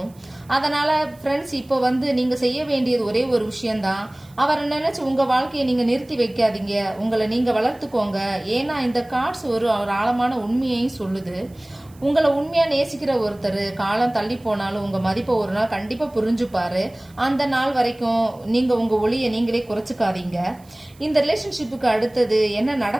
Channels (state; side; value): noise; right; hiss, 29 dB below the sound